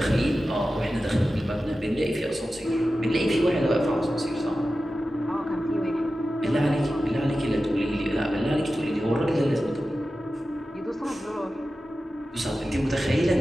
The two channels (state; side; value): normal; both; correlation 0.93